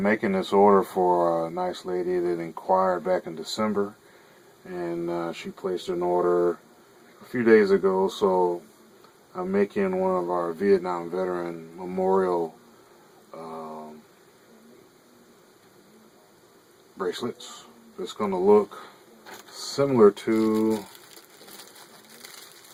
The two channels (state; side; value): identical; both; correlation 1.00